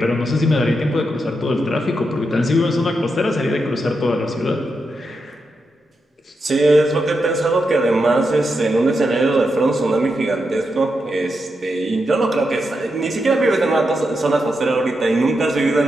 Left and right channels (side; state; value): both; normal; correlation 0.85